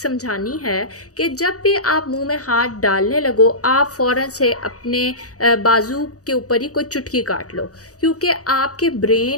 है कि जब भी आप मुंह में हाथ डालने लगो आप फ़ौरन से अपने बाजू के ऊपर ही कोई चुटकी काट लो, क्योंकि आपके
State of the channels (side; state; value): right; late; 0.66 ms